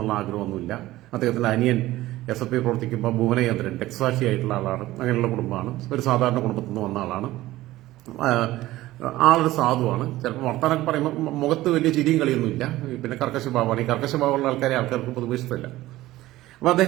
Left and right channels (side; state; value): left; quieter; 16.6 dB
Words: ആഗ്രഹമൊന്നുമില്ല. അദ്ദേഹത്തിന്റെ അനിയൻ SFI പ്രവർത്തിക്കുമ്പോൾ ഭുവനചന്ദ്രൻ രക്തസാക്ഷിയായിട്ടുള്ള ആളാണ്. അങ്ങനെയുള്ള കുടുംബമാണ്. ഒരു സാധാരണ കുടുംബത്തിൽ നിന്ന് വന്ന ആളാണ്. ആളൊരു സാധുവാണ്. ചിലപ്പോൾ വർത്താനൊക്കെ പറയുമ്പോൾ മുഖത്ത് വലിയ ചിരിയും കളിയൊന്നുമില്ല. കർക്കശഭാവമാണ്. ഈ കർക്കശഭാവമുള്ള ആൾക്കാർക്ക് പൊതുവെ ഇഷ്ടമില്ല. അപ്പൊ